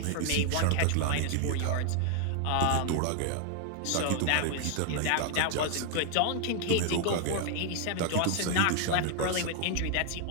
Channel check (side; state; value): both; different; correlation 0.00